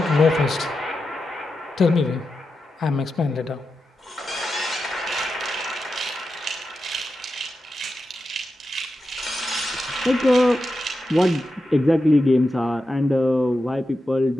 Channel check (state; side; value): normal; both; correlation 0.89